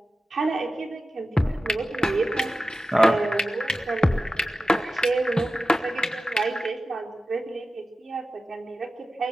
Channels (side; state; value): both; normal; correlation 0.94